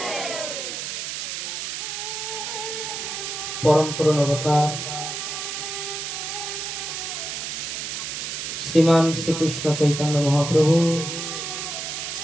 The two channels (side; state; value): right; noise; hiss, 4 dB below the sound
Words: পরম করুণ অবতার শ্রীমান শ্রীকৃষ্ণ চৈতন্য মহাপ্রভু